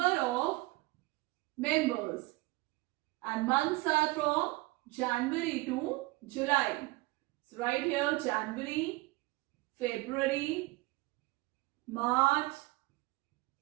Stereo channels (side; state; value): left; quieter; 21.5 dB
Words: of members. And months are from January to July. So right here January, February, March,